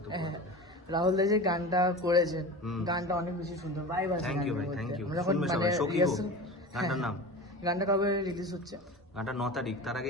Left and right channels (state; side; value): normal; both; correlation 0.31